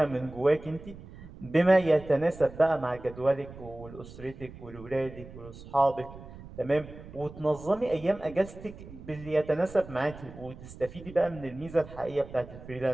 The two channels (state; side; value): noise; right; rumble, 16 dB below the sound